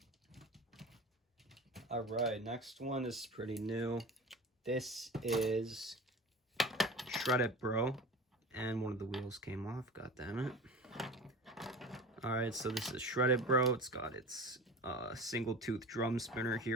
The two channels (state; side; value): normal; both; correlation 0.34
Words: Alright, next one is pretty new. This is Shoutout Bro, and one of the wheels came off, god damn it. Alright, so this is Shoutout Bro. It's got its single tooth drum spinner